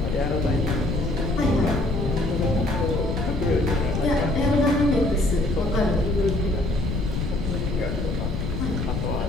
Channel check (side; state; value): left; noise; rumble, 2 dB below the sound